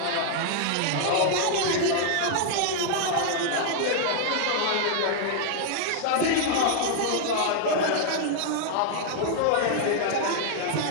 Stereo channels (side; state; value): both; different; correlation 0.00